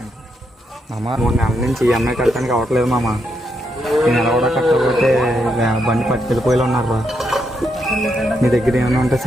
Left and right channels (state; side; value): normal; both; correlation 0.80